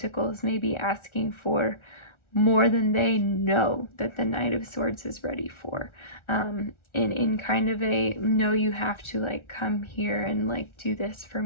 may be asking for more than they know that the Knight of Swords is ready for. In kind of a, no, you have to like come here and like do this for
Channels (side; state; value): right; late; 1.4 ms